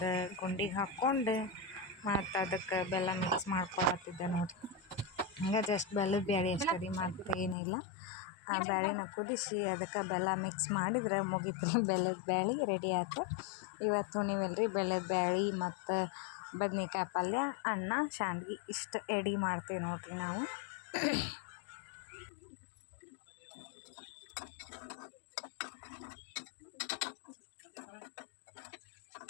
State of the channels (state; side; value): drops out; right; at 7.6 s